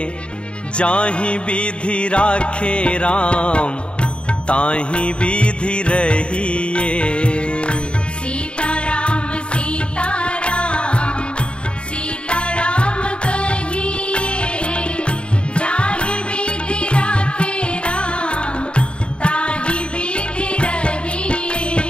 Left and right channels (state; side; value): late; right; 0.055 ms